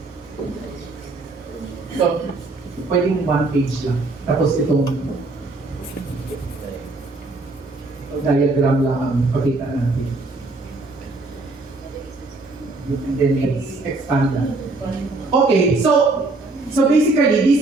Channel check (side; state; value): left; quieter; 3.3 dB